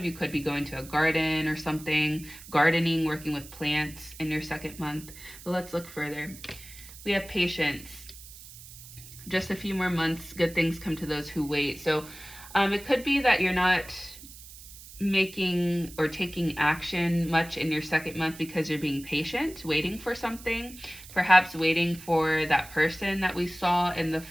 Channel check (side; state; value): right; noise; hiss, 17 dB below the sound